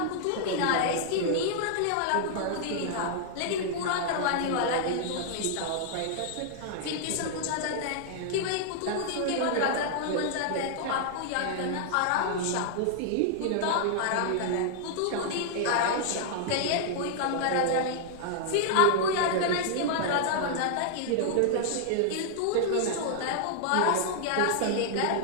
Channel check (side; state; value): both; different; correlation -0.01